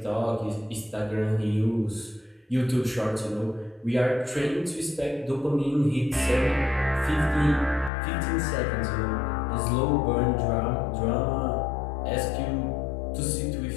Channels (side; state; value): right; drops out; at 7.9 s